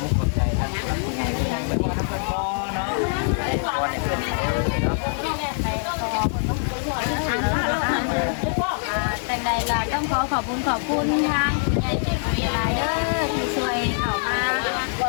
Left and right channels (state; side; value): silent; right; 60 dB below the other